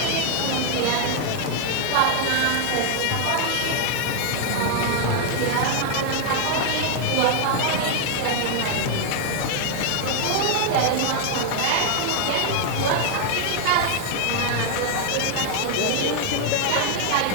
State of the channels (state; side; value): different; both; correlation 0.00